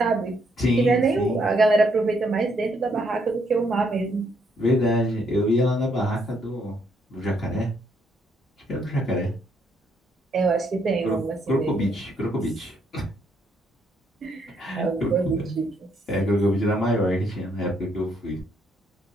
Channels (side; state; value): both; normal; correlation 0.72